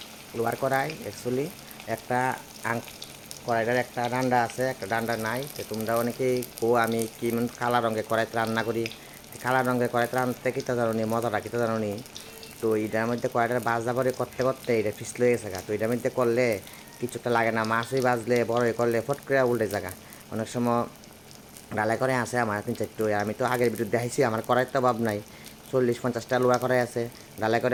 লোয়ার কড়াই অ্যাকচুয়ালি একটা কড়াইটার একটা ডান্ডা আছে, একটা ডান্ডা নাই। তো তোমরা অনেকেই আমি কি কালা রঙের কড়াইতে রান্না করি। কালা রঙের কড়াইতে রান্নাতে কিতা জানো নি, মজাটা কিতা জানো নি। তো এটার মধ্যে কড়াইটার বাজা পরে করতে করতে এটা ফিসলে গেছে গা। তো এটার মধ্যে করলে কিছুটা লাগে না, মাছই বাজলে বড়ই করলে ফট করে উল্টে জায়গা। অনেক সময় ডালাই করে আছে আমার 3-4টো। আমি তো আগের ভিডিও দেখাইছি আমার কড়াইয়ের তো অভাব নাই। 40-50টা লোহা কড়াই আছে, ডালাই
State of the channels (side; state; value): both; identical; correlation 1.00